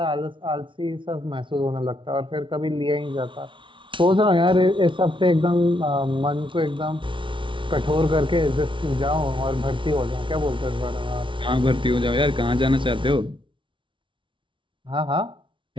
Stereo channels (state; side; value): late; left; 0.25 ms